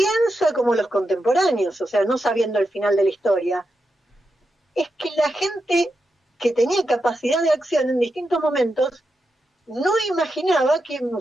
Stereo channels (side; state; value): both; normal; correlation 0.87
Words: como los contemporáneos, o sea, no sabiendo el final de la historia, es que la gente que tenía capacidad de acción en distintos momentos no imaginaba que